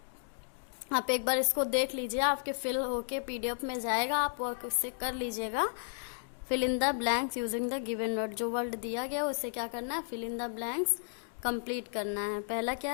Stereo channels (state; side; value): silent; right; digital silence